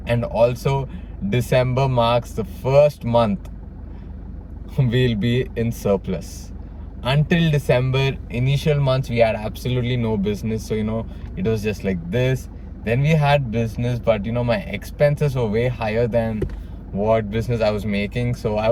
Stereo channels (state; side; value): identical; both; correlation 1.00